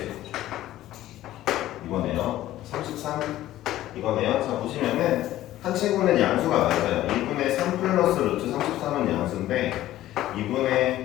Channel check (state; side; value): quieter; right; 14.3 dB